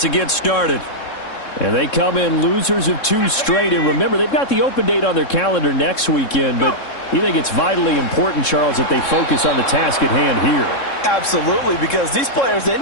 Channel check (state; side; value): late; right; 3.7 ms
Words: to get started. And they come in losers of 2 straight. And remember, they've got the open date on their calendar next weekend. But you think it's vitally important, Charles, that they focus on the task at hand here? Absolutely, because these players, they